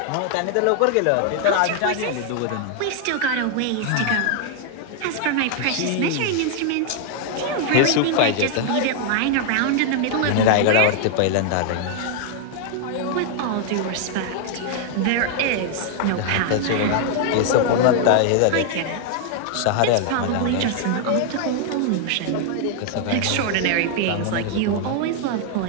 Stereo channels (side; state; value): both; different; correlation 0.00